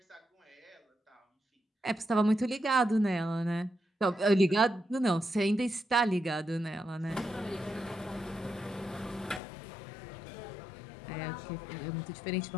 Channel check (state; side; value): drops out; right; at 9.4 s